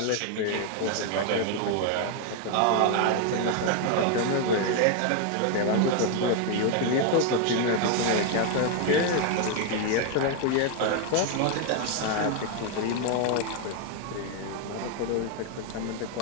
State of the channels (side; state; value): both; different; correlation 0.01